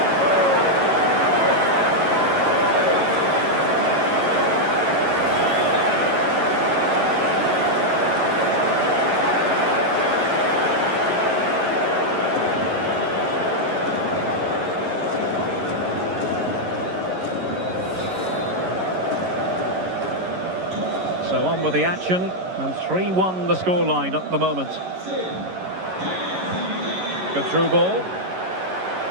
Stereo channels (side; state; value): left; late; 11 ms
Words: So on with the action, and 3-1 the scoreline at the moment. Good through ball.